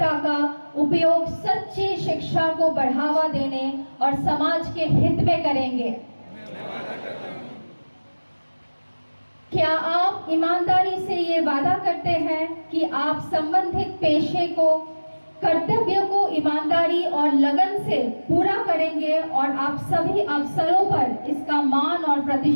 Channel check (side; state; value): both; inverted; correlation -1.00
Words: का उपयोग सच्ची शिक्षा को बढ़ावा देने और समाज के हित में करेंगे? क्या आप ईमानदारी से ये वादा करते हैं कि आप संबंधित पेशे को, कर्तव्य को ईमानदारी और लगन से पूरा करेंगे और आप सभी अवसरों पर इसका मान और